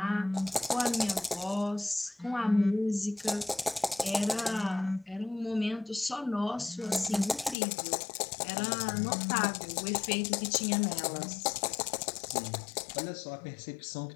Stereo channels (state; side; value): drops out; right; at 7.6 s